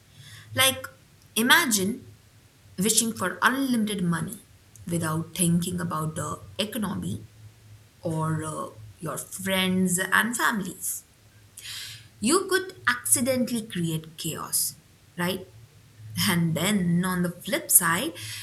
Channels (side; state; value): both; identical; correlation 1.00